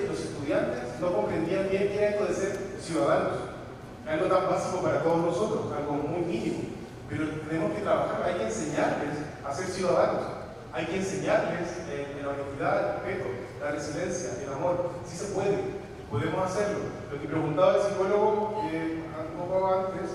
los estudiantes no comprendían bien qué era esto de ser ciudadanos. Algo tan básico para todos nosotros, algo muy mínimo. Pero tenemos que trabajar, hay que enseñarles a ser ciudadanos. Hay que enseñarles la honestidad, el respeto, la resiliencia, el amor. Sí se puede, podemos hacerlo. Lo que preguntaba el psicólogo un poco antes,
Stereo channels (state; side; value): identical; both; correlation 1.00